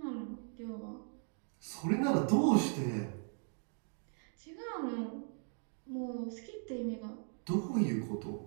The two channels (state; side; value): silent; left; 52 dB below the other